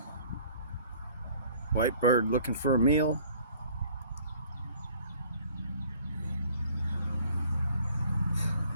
White bird looking for a meal.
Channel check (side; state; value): both; inverted; correlation -0.54